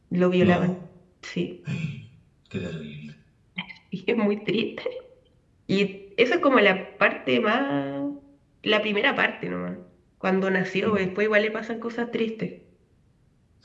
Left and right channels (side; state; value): both; identical; correlation 1.00